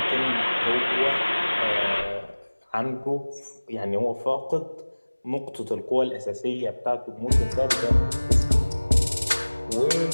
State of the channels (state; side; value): inverted; both; correlation -1.00